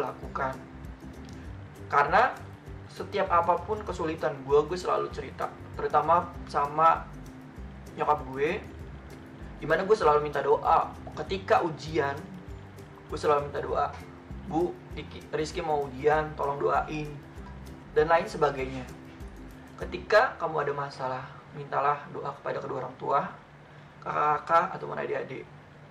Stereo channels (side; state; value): both; identical; correlation 1.00